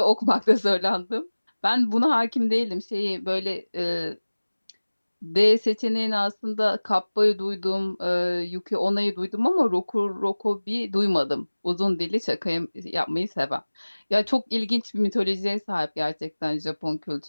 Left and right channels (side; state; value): both; inverted; correlation -1.00